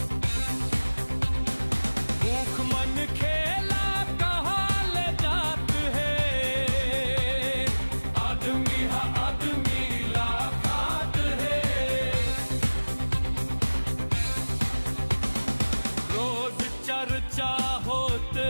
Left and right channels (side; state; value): both; inverted; correlation -1.00